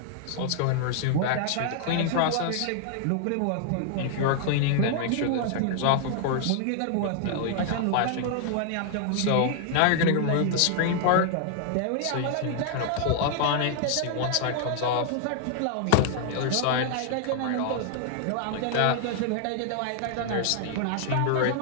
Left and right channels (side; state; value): both; different; correlation 0.00